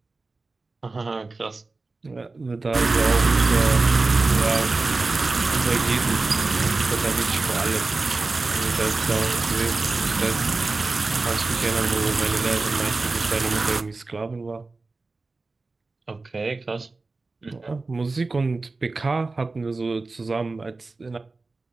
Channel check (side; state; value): left; quieter; 3.6 dB